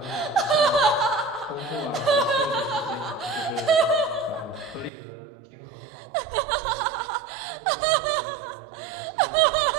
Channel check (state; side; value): drops out; left; at 4.9 s